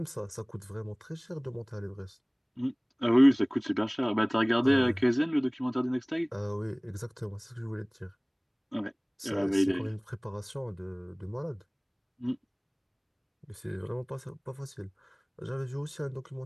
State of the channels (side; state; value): both; identical; correlation 1.00